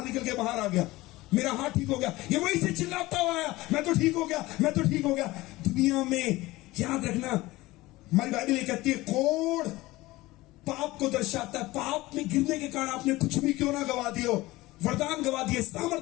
निकल के बाहर आ गया, मेरा हाथ ठीक हो गया। ये वहीं से चिल्लाता हुआ आया, मैं तो ठीक हो गया, मैं तो ठीक हो गया। दुनिया में याद रखना, हमारी बाइबल ये कहती है कोढ़ पाप को दर्शाता है। पाप में गिरने के कारण आपने कुछ भी क्यों ना गवा दियो, वरदान गवा दिए,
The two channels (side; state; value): right; quieter; 19.2 dB